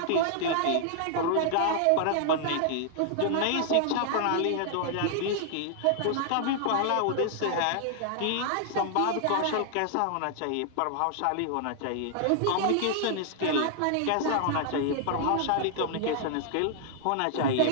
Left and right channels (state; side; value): different; both; correlation -0.01